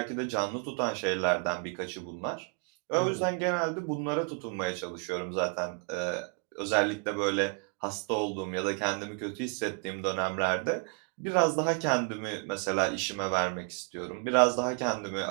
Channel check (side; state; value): left; quieter; 34.6 dB